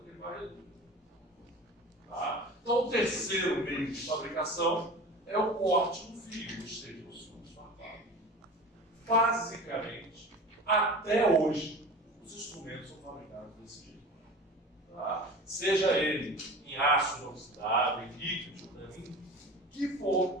que ele vai reduzir. Tá? Então, o terceiro meio de fabricação é o corte do fio, ou seja, os fios farpados. Basicamente, até hoje, os instrumentos são fabricados desse jeito. Tá? Seja ele em aço inoxidável, em líquido, que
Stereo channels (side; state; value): both; normal; correlation 0.36